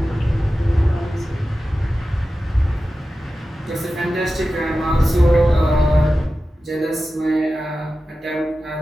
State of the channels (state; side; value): normal; both; correlation 0.94